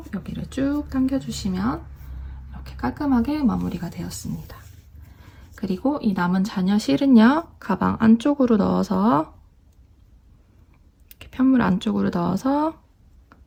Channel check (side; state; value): both; identical; correlation 1.00